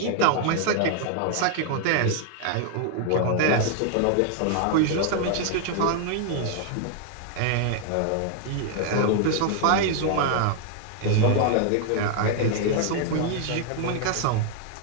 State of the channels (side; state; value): both; different; correlation 0.00